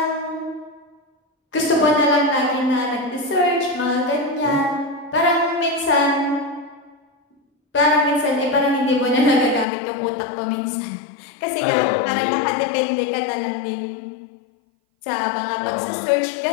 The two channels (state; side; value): drops out; right; at 9.7 s